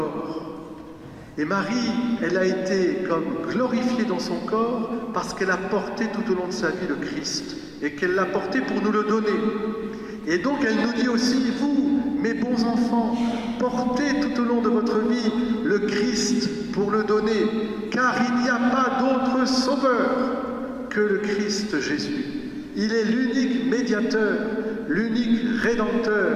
Et Marie, elle a été comme glorifiée dans son corps parce qu'elle a porté tout au long de sa vie le Christ et qu'elle l'a porté pour nous le donner. Et donc elle nous dit aussi, vous, mes bons enfants, portez tout au long de votre vie le Christ pour le donner, car il n'y a pas d'autre sauveur que le Christ Jésus. Il est l'unique médiateur, l'unique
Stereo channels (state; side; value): identical; both; correlation 1.00